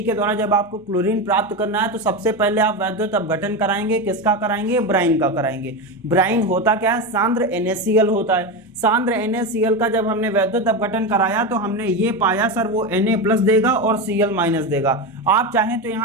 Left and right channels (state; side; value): normal; both; correlation 0.17